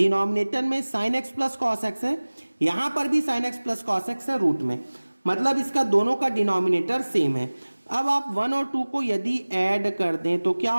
में sign X plus cos x है, यहाँ पर भी sign X plus cos x है रूट में, मतलब इसका दोनों का डिनोमिनेटर सेम है। अब आप 1 और 2 को यदि ऐड कर दें तो क्या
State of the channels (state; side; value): inverted; both; correlation -1.00